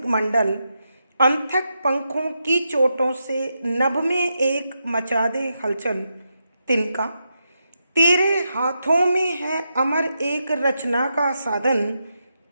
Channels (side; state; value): both; inverted; correlation -0.85